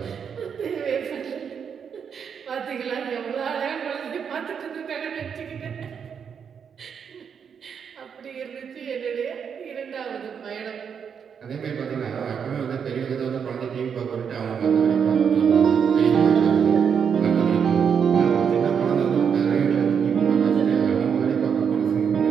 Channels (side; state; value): left; quieter; 7.1 dB